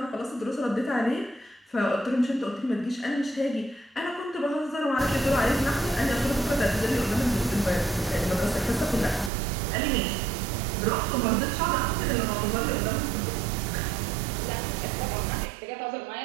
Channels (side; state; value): left; drops out; at 9.3 s